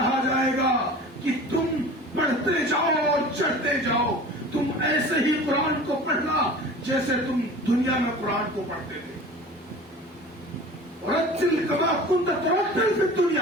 جائے گا کہ تم پڑھتے جاؤ اور چڑھتے جاؤ، تم ایسے ہی قرآن کو پڑھنا جیسے تم دنیا میں قرآن کو پڑھتے تھے. رتل کما کنت ترتل فی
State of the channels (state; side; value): normal; both; correlation 0.39